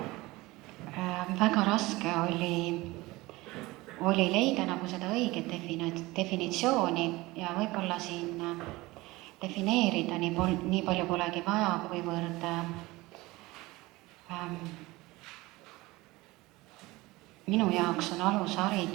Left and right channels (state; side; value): quieter; left; 20.7 dB